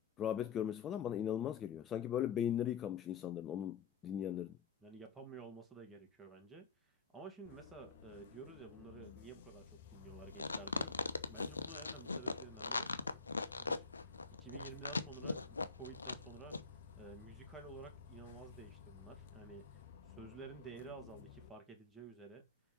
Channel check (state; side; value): quieter; right; 5.6 dB